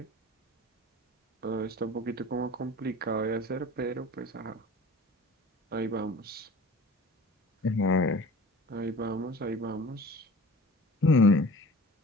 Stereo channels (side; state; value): both; normal; correlation 0.41